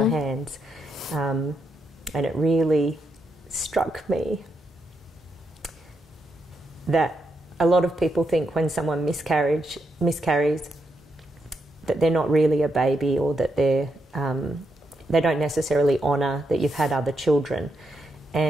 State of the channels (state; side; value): normal; both; correlation 0.82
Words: hands. And it really struck me that a lot of people think when someone miscarries that they're not really a baby, or that they don't necessarily honour that you've had other children.